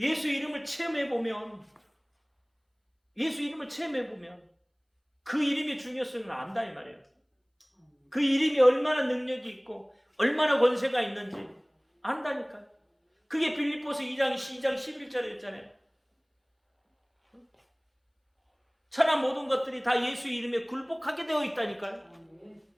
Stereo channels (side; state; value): both; identical; correlation 1.00